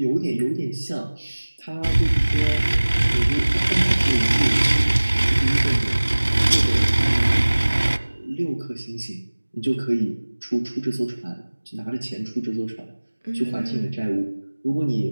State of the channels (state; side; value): inverted; both; correlation -1.00